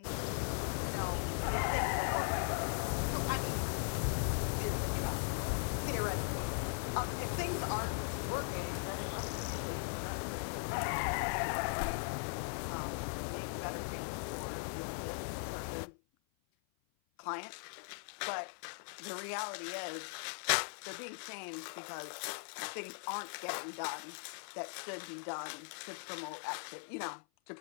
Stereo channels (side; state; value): right; silent; 52 dB below the other